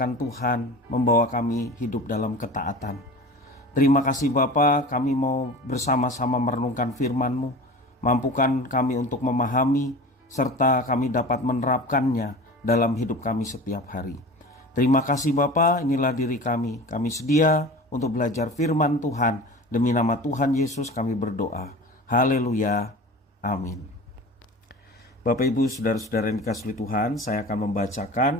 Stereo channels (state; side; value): normal; both; correlation 0.36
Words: Tuhan membawa kami hidup dalam ketaatan. Terima kasih Bapa, kami mau bersama-sama merenungkan firman-Mu. Mampukan kami untuk memahami, serta kami dapat menerapkannya dalam hidup kami setiap hari. Terima kasih Bapa, inilah diri kami. Kami sedia untuk belajar firman Tuhan. Demi nama Tuhan Yesus kami berdoa. Haleluya. Amin. Bapak Ibu Saudara-saudara yang dikasihi Tuhan, saya akan